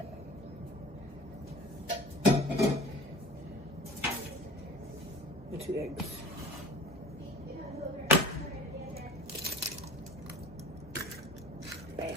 And 2 eggs. Bam.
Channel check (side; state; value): both; normal; correlation 0.43